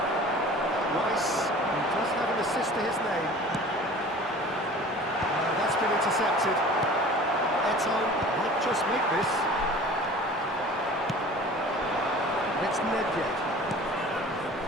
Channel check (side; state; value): both; normal; correlation 0.43